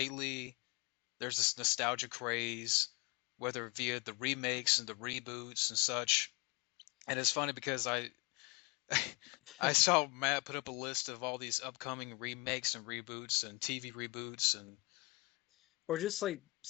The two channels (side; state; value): right; quieter; 25.7 dB